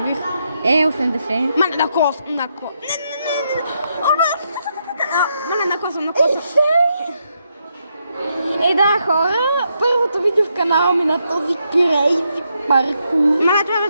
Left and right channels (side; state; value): both; inverted; correlation -0.80